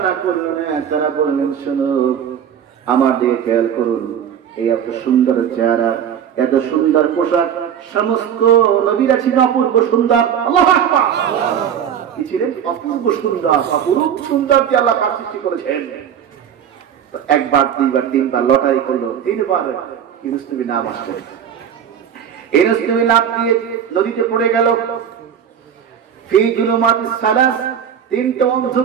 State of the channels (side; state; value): left; quieter; 8.7 dB